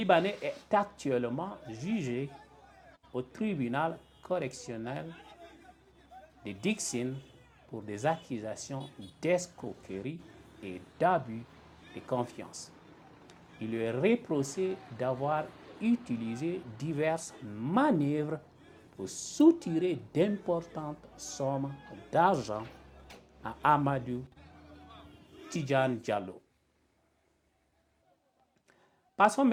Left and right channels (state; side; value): identical; both; correlation 1.00